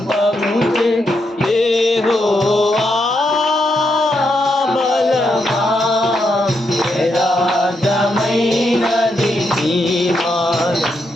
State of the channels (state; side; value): normal; both; correlation 0.81